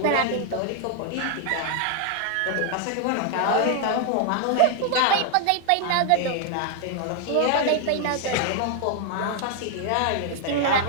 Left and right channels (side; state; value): both; different; correlation 0.00